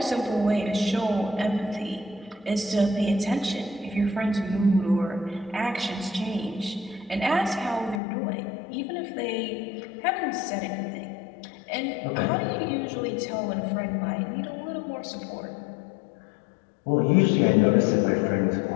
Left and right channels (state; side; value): drops out; right; at 8.0 s